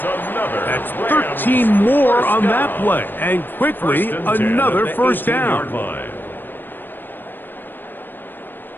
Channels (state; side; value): late; right; 0.094 ms